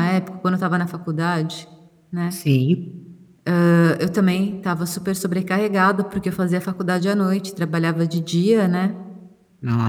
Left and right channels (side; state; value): both; identical; correlation 1.00